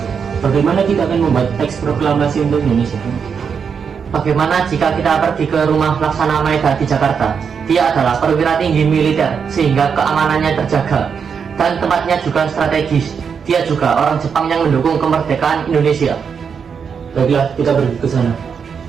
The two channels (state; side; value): quieter; left; 6.5 dB